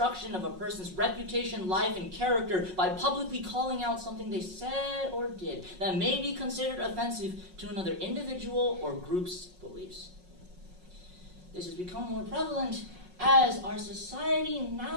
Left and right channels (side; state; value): left; late; 5.5 ms